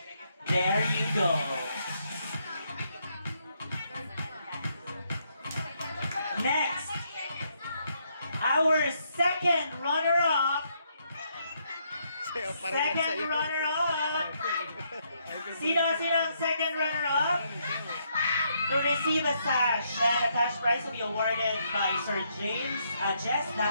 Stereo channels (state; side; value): inverted; both; correlation -0.75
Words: There you go. Next, our second runner-up. Second runner-up. Sino ang second runner-up? To receive a sash and a cash prize will be awarded by Sir Jess